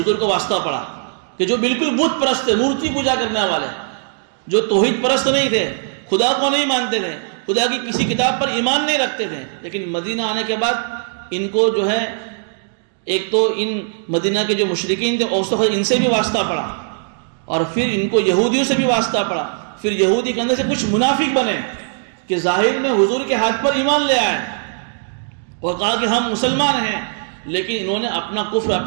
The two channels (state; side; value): silent; left; digital silence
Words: کو واسطہ پڑا کہ جو بالکل بت پرست تھے، مورتی پوجا کرنے والے، جو توحید پرست نہیں تھے، خدا کو نہیں مانتے تھے، خدا کی کسی کتاب پر ایمان نہیں رکھتے تھے. لیکن مدینہ آنے کے بعد ان کو جو ہے ایک تو ان مدینہ کے جو مشرکین تھے ان سے بھی واسطہ پڑا، اور پھر ان کو یہودیوں سے بھی واسطہ پڑا. پھر یہودی کے اندر سے کچھ منافق بنے کہ ظاہر میں حضور کے ہاتھ پر ایمان لے آئے اور کہا کہ ہم مسلمان ہیں، لیکن انہوں نے اپنا کفر